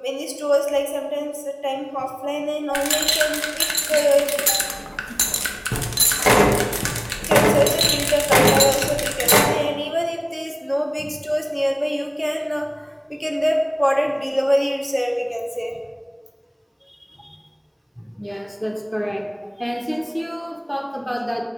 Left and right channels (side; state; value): both; identical; correlation 1.00